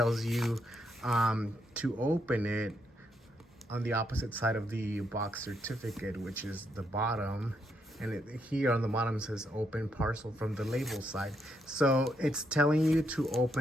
you to open it on the opposite side of the box certificate, which is the bottom. And here on the bottom says open parcel from the label side. So it's telling you to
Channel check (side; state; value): both; normal; correlation 0.77